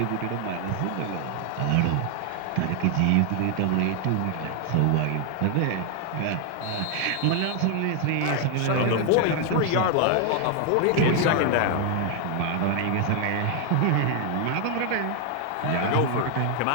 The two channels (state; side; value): different; both; correlation 0.00